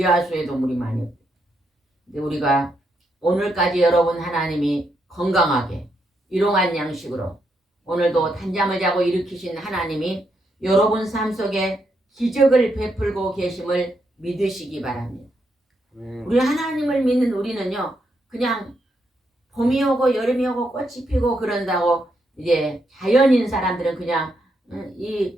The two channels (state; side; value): normal; both; correlation 0.80